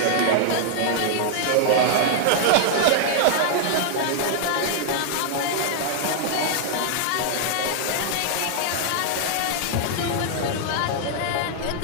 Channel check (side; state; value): both; different; correlation -0.01